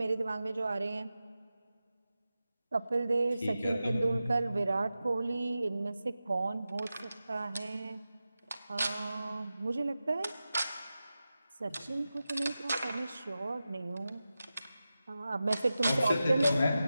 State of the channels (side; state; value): both; inverted; correlation -0.93